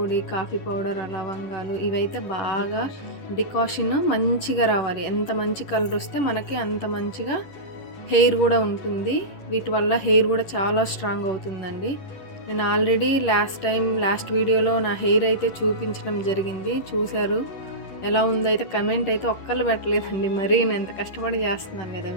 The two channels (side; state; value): right; late; 10 ms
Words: కాఫీ పౌడర్, లవంగాలు ఇవైతే బాగా డికాషన్ మంచిగా రావాలి. ఎంత మంచి కలర్ వస్తే మనకి అంత మంచిగా హెయిర్ కూడా ఉంటుంది. వీటి వల్ల హెయిర్ కూడా చాలా స్ట్రాంగ్ అవుతుందండి. నేను ఆల్రెడీ లాస్ట్ వీడియోలో నా హెయిర్ అయితే చూపించడం జరిగింది, చూశారు. ఎలా ఉందైతే కమెంట్ అయితే ఒక్కళ్ళు పెట్టలేదండి. మరీ నేను ఎంత కష్టపడి చేస్తున్నాను కదా,